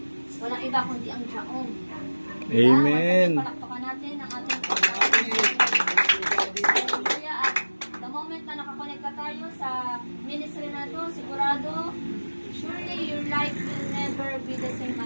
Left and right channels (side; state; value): both; inverted; correlation -1.00